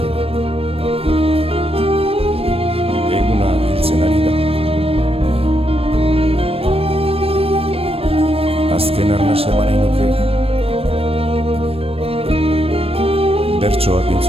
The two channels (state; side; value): late; left; 0.28 ms